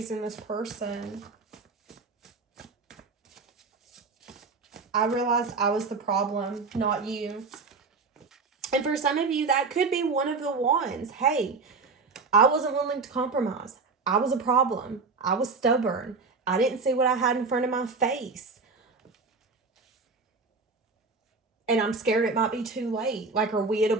in this person? I realized I was the problem, not you. And for some of you, that could be one of the ones. Hey, I wasn't willing to compromise. I was a problem. I was stubborn. I didn't see what I had in front of my face. And I'm scared it might be too late. Like, are we at a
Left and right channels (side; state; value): left; quieter; 4.3 dB